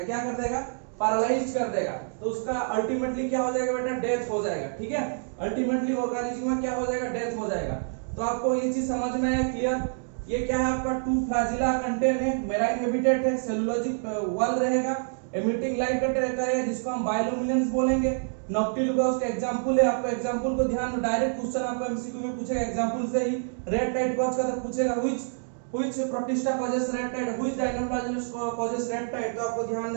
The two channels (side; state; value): left; silent; digital silence